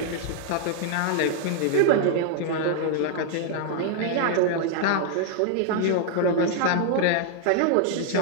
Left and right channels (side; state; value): both; different; correlation -0.01